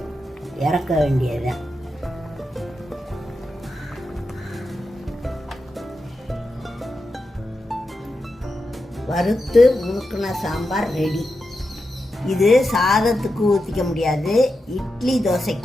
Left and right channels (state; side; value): normal; both; correlation 0.88